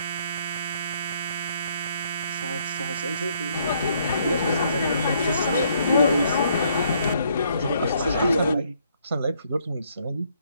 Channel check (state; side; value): inverted; both; correlation -0.69